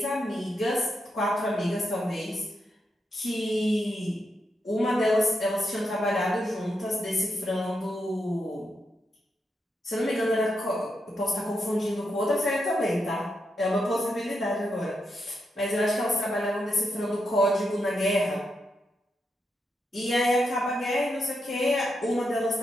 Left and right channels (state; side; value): normal; both; correlation 0.83